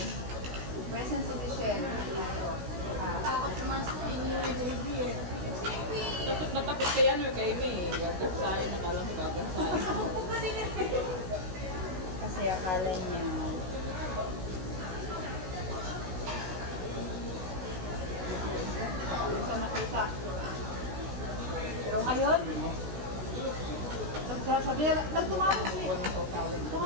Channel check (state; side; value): late; left; 16 ms